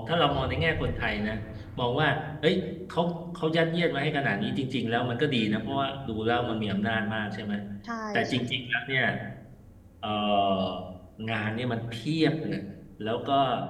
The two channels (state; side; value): identical; both; correlation 1.00